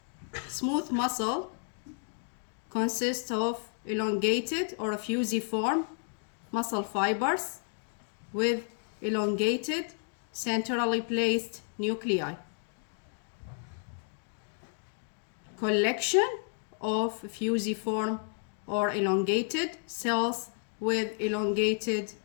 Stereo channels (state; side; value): silent; right; 57 dB below the other